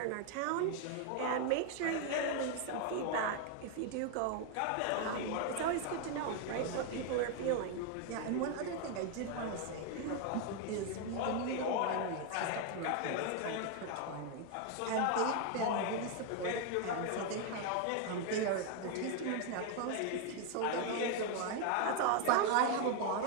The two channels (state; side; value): different; both; correlation 0.01